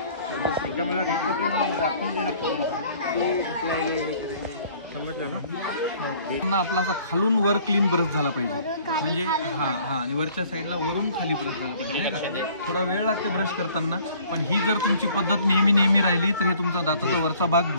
एकदा मला रिपोर्ट दाखवून देणं समजलं ना। आपला असा खालून वर क्लीन ब्रश झाला पाहिजे, म्हणजे आणि वरच्या साईडला वरून खाली ब्रश झाला पाहिजे। थोडा वेळ लागते ब्रश करताना, पण ही जर तुमची पद्धत नेहमी राहिली तर हे तुमचा दाताचा वरचा भाग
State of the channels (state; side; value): inverted; both; correlation -0.55